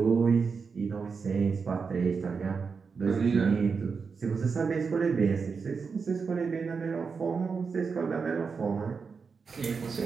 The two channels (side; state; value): left; quieter; 5.3 dB